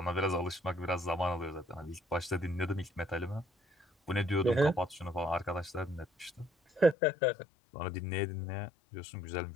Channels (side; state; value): right; drops out; at 7.0 s